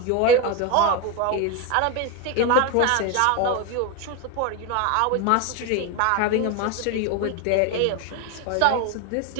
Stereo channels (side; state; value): both; different; correlation 0.02